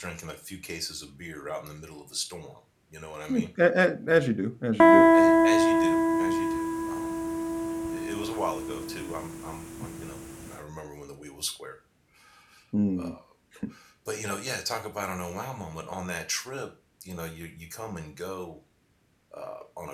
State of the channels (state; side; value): identical; both; correlation 1.00